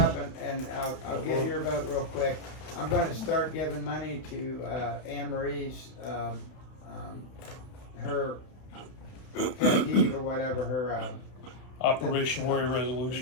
and I'll get your vote real quick. I'm gonna start giving money to, Anne Marie's, her pet peeve or whatever, her, Operation Warrior Resolution.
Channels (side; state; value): right; late; 31 ms